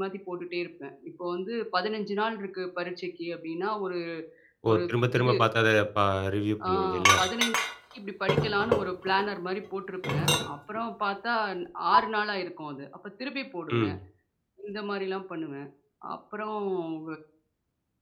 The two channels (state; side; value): identical; both; correlation 1.00